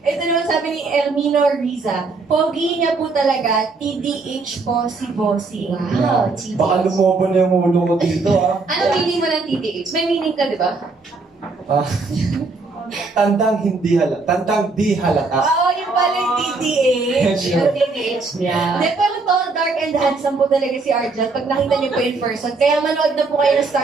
Ito naman sabi ni Elmino Riza, pogi niya po talaga, TDH po si Bossing. Wow, TDH. Baka lumobo na yung ulo ko dito, ah. Ano meaning mo ng TDH? May meaning ka, di ba? Tandang hindi halata. Tandang di halata. Oo, yung pala yung TDH. Yung TDH niya. Hindi, pero tall, dark, and handsome po talaga si Arjan pag nakita niyo po in person. Kaya manood na po kayo ng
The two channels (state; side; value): quieter; left; 3.9 dB